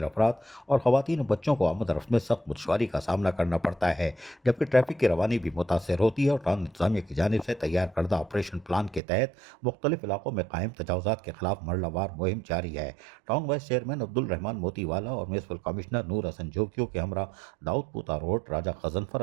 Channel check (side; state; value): left; drops out; at 9.0 s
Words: افراد اور خواتین و بچوں کو آمد و رفت میں سخت دشواری کا سامنا کرنا پڑتا ہے، جبکہ ٹریفک کی روانی بھی متاثر ہوتی ہے اور ٹاؤن انتظامیہ کی جانب سے تیار کردہ آپریشن پلان کے تحت مختلف علاقوں میں قائم تجاوزات کے خلاف مرحلہ وار مہم جاری ہے۔ ٹاؤن وائس چیئرمین عبد الرحمان موتی والا اور میونسپل کمشنر نور حسن جوکیو کے ہمراہ داؤد پوتا روڈ، راجہ غضنفر